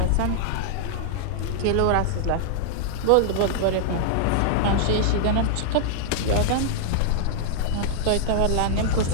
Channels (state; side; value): different; both; correlation -0.01